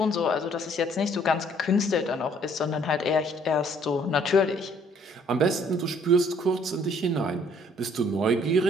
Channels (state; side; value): normal; both; correlation 0.61